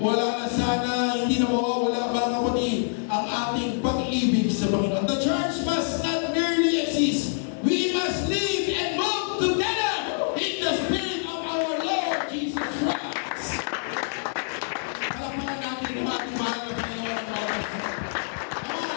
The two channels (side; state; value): right; silent; digital silence